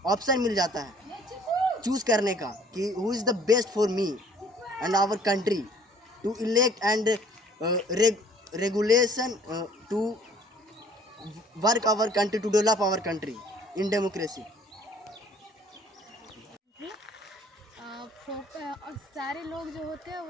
ऑप्शन मिल जाता है चूज़ करने का कि who is the best for me and our country to elect and regulation to work our country, to develop our country in democracy. और सारे लोग जो होते हैं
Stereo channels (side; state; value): both; normal; correlation 0.55